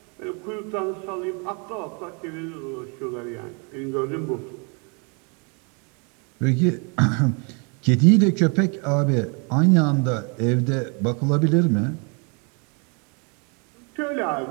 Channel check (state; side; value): quieter; left; 34.7 dB